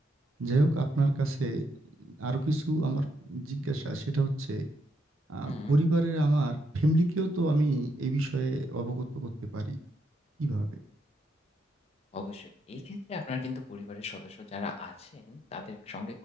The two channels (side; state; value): both; normal; correlation 0.78